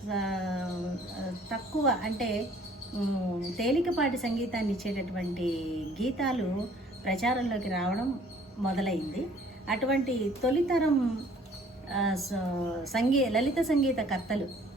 తక్కువ అంటే తేలికపాటి సంగీతాన్ని ఇచ్చేటటువంటి గీతాలు ప్రచారంలోకి రావడం మొదలైంది. అటువంటి తొలితరం లలిత సంగీత కర్తలు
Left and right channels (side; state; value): both; normal; correlation 0.56